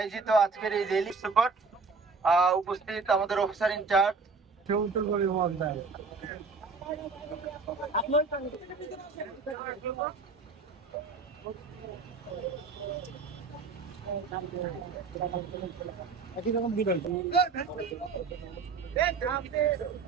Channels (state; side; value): quieter; left; 4.6 dB